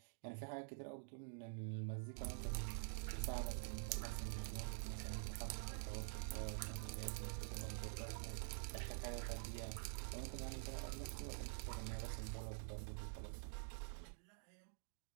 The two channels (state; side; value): silent; left; digital silence